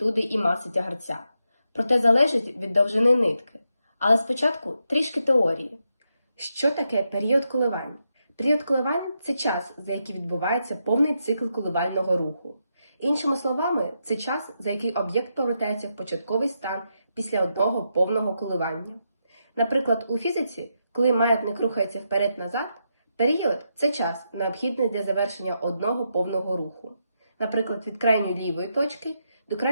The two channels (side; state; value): both; inverted; correlation -0.83